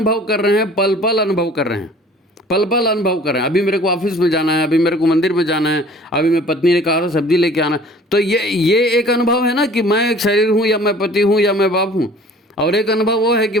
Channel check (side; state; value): both; normal; correlation 0.49